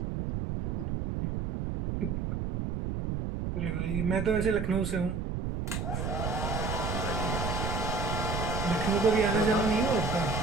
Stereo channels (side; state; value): right; noise; rumble, 2 dB below the sound